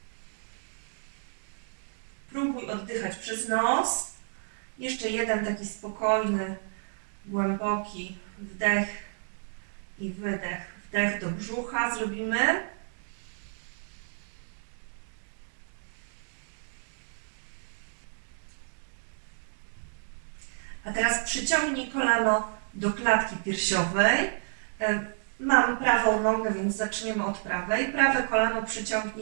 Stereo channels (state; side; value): silent; left; digital silence